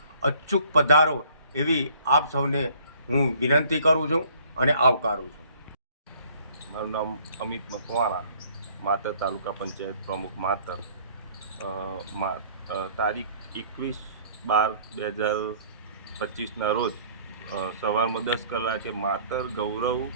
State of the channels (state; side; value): inverted; both; correlation -0.57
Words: અચૂક પધારો એવી આપ સૌને હું વિનંતી કરું છું અને આવકારું છું. મારું નામ અમિત મકવાણા, માતર તાલુકા પંચાયત પ્રમુખ માતર. તારીખ 21/12/2025ના રોજ સવારમાં 10 કલાકે માતર ગૌરવ